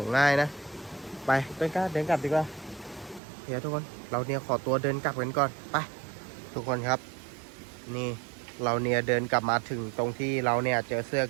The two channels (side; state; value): left; drops out; at 3.2 s